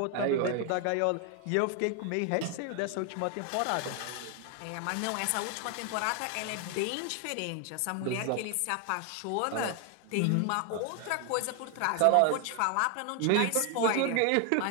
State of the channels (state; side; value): different; both; correlation 0.00